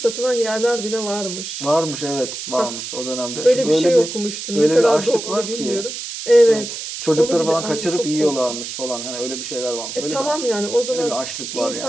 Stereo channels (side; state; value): right; noise; hiss, 7 dB below the sound